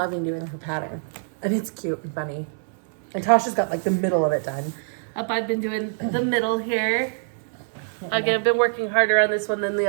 doing her pattern, and it's cute and funny. And Tasha's got like the middle of it done. I've been doing the middle here. Again, I've been working harder on this one than the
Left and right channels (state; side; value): silent; left; 62 dB below the other